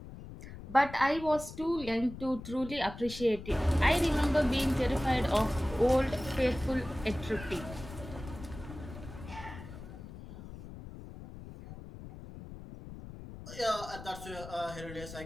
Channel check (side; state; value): left; noise; rumble, 13 dB below the sound